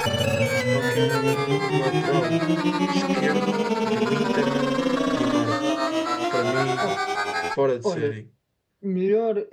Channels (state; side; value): identical; both; correlation 1.00